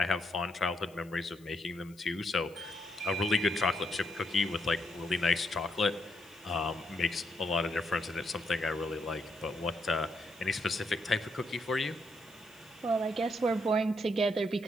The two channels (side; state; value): left; noise; hiss, 27 dB below the sound